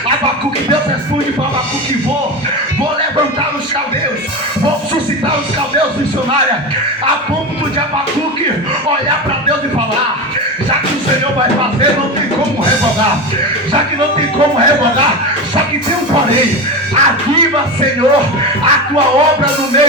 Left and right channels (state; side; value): normal; both; correlation 0.22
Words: Abacuque, Deus responde para Abacuque: vou levantar os caldeus, vou suscitar os caldeus missionários, a ponto de Abacuque olhar para Deus e falar: já que o Senhor vai fazer, não tem como revogar. Já que não tem como revogar, só que tem um porém: aviva, Senhor, a tua obra no